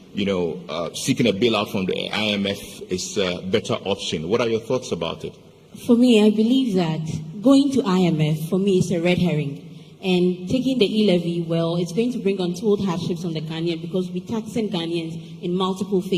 seeking a bailout from the IMF is a better option. What are your thoughts about it? For me, I believe that going to IMF, for me, is a red herring. And taking the e-levy, well, it's going to bring untold hardships on the Ghanaian because we're taxing Ghanaians in multiple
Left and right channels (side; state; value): both; identical; correlation 1.00